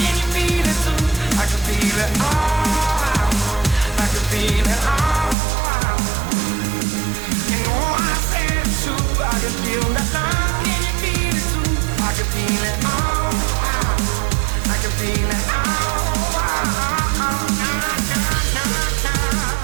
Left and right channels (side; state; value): left; drops out; at 5.4 s